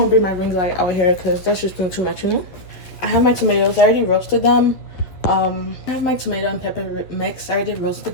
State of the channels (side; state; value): right; late; 11 ms